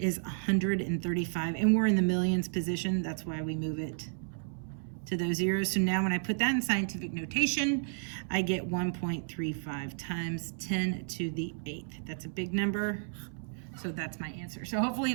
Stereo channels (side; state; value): left; silent; 56 dB below the other